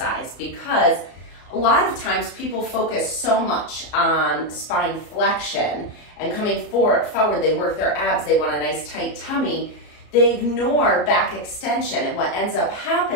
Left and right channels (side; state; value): right; late; 34 ms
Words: because a lot of times people focus so much on spine flexion and coming forward, they work their abs, they want a nice tight tummy, they ignore back extension, and what ends up